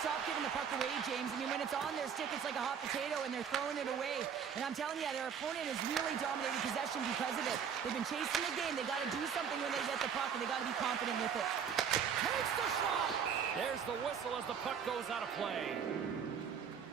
stop giving the puck away, James. I mean, when it's on their stick, it's like a hot potato, and they're throwing it away. And I'm telling you, their opponent has really dominated possession because of it. They've been chasing the game. They got to do something when they get the puck, and they got to be confident with it. Takes the shot! There's the whistle as the puck goes out of play.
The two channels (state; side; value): quieter; left; 7.4 dB